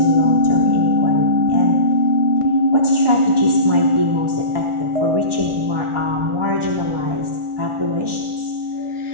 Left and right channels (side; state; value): left; late; 1.4 ms